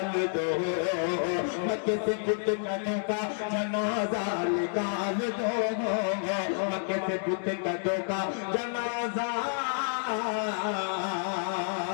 दो, मक्के से बुत कदों का जनाजा निकाल दो, मक्के से बुत कदों का जनाजा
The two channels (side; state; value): right; silent; digital silence